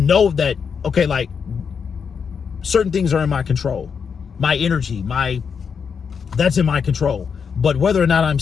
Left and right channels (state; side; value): quieter; right; 6.4 dB